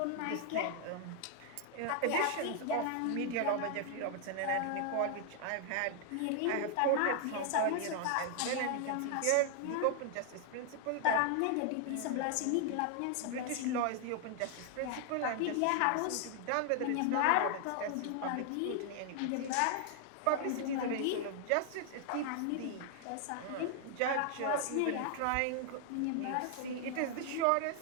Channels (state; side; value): different; both; correlation 0.00